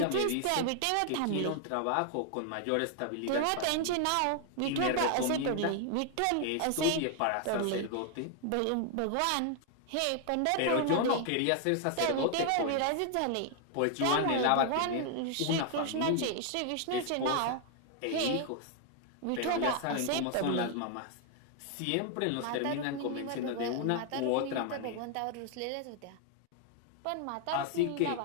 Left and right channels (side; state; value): both; different; correlation 0.00